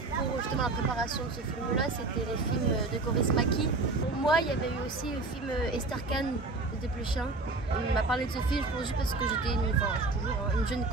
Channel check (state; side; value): quieter; left; 3.4 dB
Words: justement la préparation de ce film-là, c'était les films de Kaurismäki. Pour moi, il y avait eu aussi le film Esther Kahn de Desplechin. Il m'a parlé de ce film, je pense juste parce que j'étais toujours une jeune